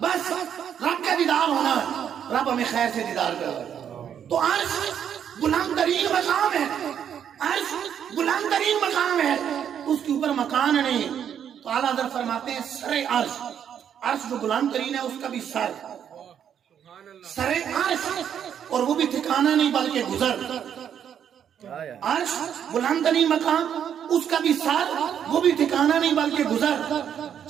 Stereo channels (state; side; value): quieter; left; 8.8 dB